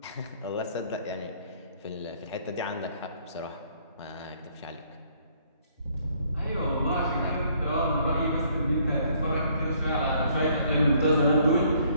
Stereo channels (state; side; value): inverted; both; correlation -0.64